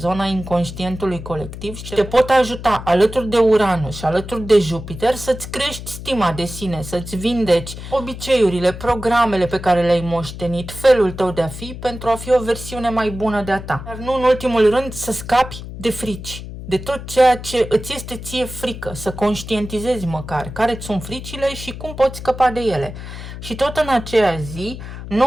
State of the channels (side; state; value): left; noise; hum, 11 dB below the sound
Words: inconștientului colectiv și te pot ajuta alături de Uranus și alături de Jupiter să-ți crești stima de sine, să-ți vindeci obiceiurile, programele pe care le-ai moștenit, felul tău de a fi pentru a fi o versiune mai bună de-a ta. Dar nu în ultimul rând să scapi de frici, de tot ceea ce îți este ție frică, să conștientizezi măcar care-ți sunt fricile și cum poți scăpa de ele. Și tot în aceea zi,